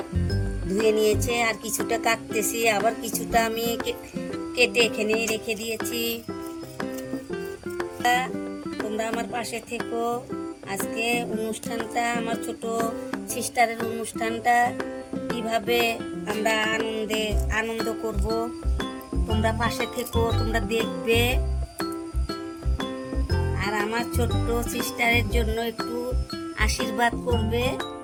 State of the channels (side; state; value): both; identical; correlation 1.00